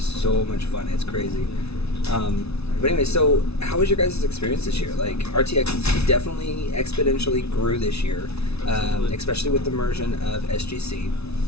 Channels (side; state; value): right; late; 0.80 ms